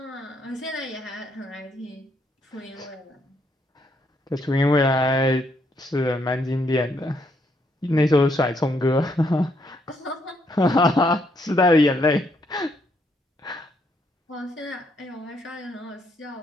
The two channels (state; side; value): normal; both; correlation 0.73